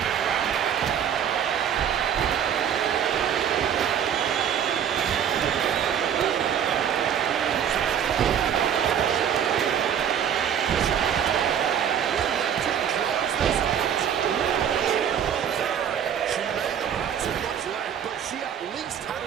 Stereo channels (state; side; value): quieter; left; 8.7 dB